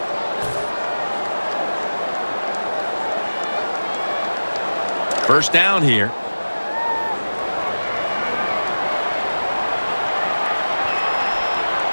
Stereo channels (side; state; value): both; inverted; correlation -1.00